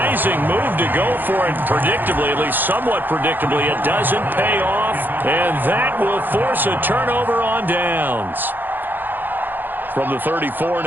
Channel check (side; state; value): left; late; 0.089 ms